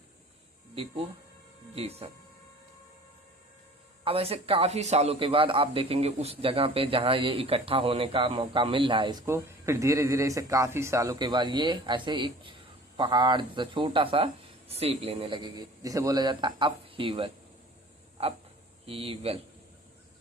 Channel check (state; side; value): normal; both; correlation 0.45